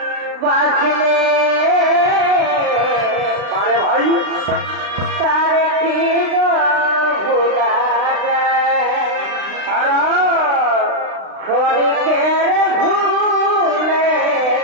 বারে ভাই, তার কি গো ভোলা যায়? ক্ষণিকের ভুলে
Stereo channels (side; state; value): left; late; 36 ms